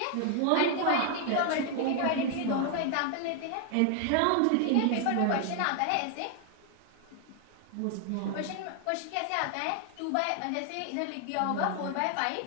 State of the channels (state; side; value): different; both; correlation 0.00